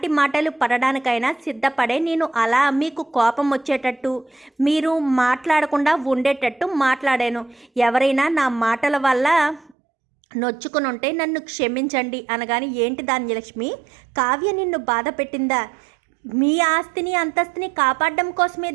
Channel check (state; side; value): drops out; left; at 9.8 s